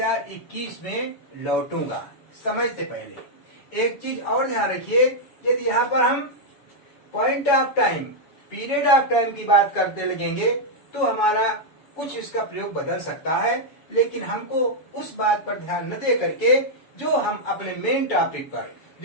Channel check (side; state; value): right; late; 7.1 ms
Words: में लौटूंगा, समय से पहले। एक चीज और ध्यान रखिए, यदि यहाँ पर हम point of time, period of time की बात करते लगेंगे तो हमारा कुछ इसका प्रयोग बदल सकता है, लेकिन हमको उस बात पर ध्यान न दे करके जो हम अपने मेन टॉपिक पर,